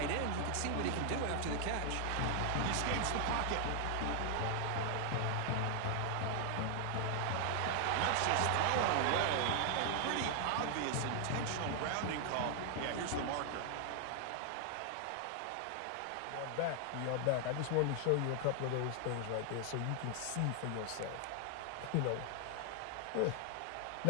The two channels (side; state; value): both; different; correlation 0.00